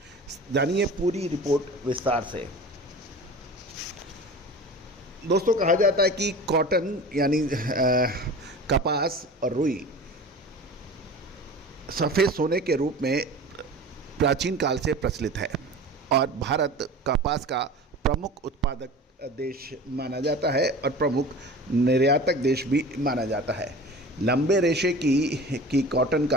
जानिए पूरी रिपोर्ट विस्तार से। दोस्तों कहा जाता है कि कॉटन यानी कपास और रुई सफ़ेद सोने के रूप में प्राचीन काल से प्रचलित है और भारत कपास का प्रमुख उत्पादक देश माना जाता है और प्रमुख निर्यातक देश भी माना जाता है। लंबे रेशे की कॉटन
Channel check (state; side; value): normal; both; correlation 0.37